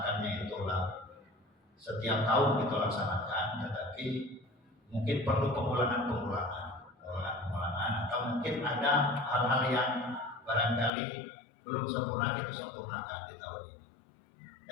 itulah setiap tahun kita laksanakan, tetapi mungkin perlu pengulangan atau mungkin ada hal-hal yang barangkali belum sempurna kita sempurnakan di tahun ini.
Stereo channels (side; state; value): right; drops out; at 10.9 s